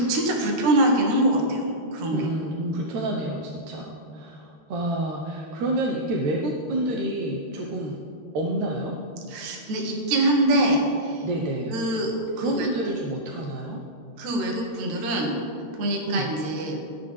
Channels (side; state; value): left; late; 13 ms